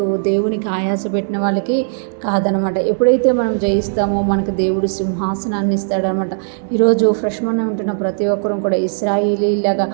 దేవునికి ఆయాస పెట్టిన వాళ్ళకి కాదనమాట. ఎప్పుడైతే మనం జయిస్తామో మనకు దేవుడు సింహాసనాన్ని ఇస్తాడనమాట. ఈరోజు ఫ్రెష్ మనం ఉంటున్న ప్రతి ఒక్కరూ కూడా ఇశ్రాయేలీలాగా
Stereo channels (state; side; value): silent; left; digital silence